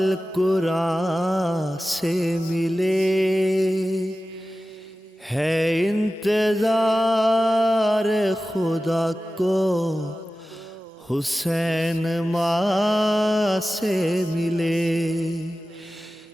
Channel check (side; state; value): both; normal; correlation 0.95